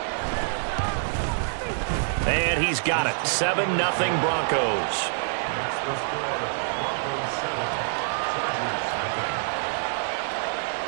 And he's got it. 7-0 Broncos.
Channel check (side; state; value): left; silent; digital silence